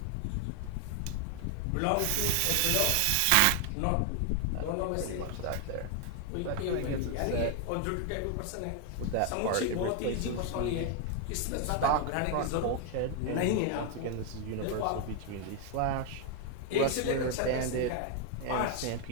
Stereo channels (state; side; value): different; both; correlation 0.00